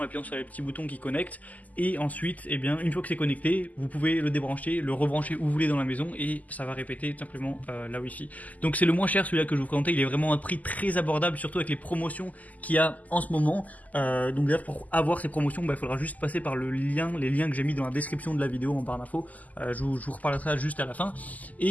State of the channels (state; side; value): late; right; 0.078 ms